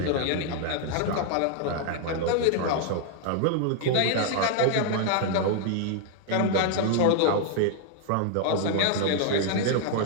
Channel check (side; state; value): both; different; correlation 0.00